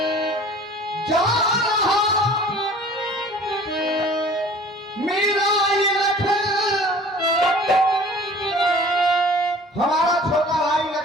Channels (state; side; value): normal; both; correlation 0.47